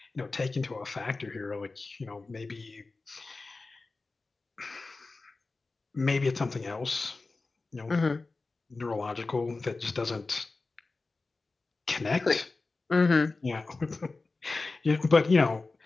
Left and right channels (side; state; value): right; quieter; 3.6 dB